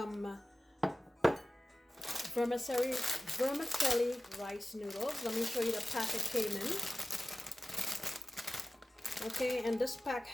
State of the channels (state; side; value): normal; both; correlation 0.96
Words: vermicelli rice noodles. Let me show you the pack it came in. Okay, and this pack